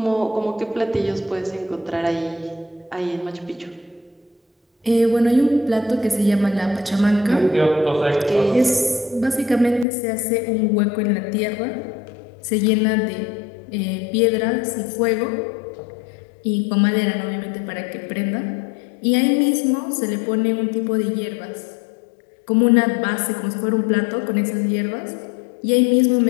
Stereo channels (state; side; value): drops out; right; at 9.9 s